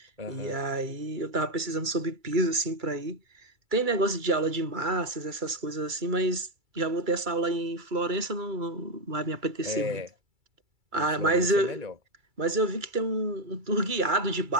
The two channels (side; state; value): left; late; 2.3 ms